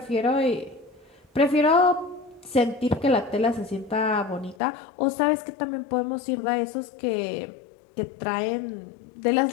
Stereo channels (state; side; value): drops out; right; at 4.5 s